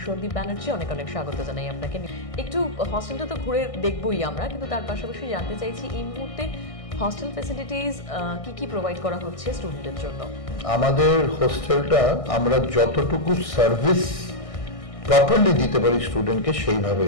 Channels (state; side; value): late; right; 1.6 ms